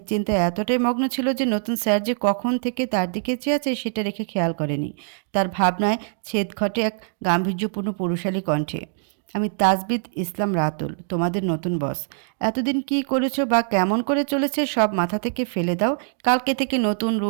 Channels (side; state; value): left; silent; digital silence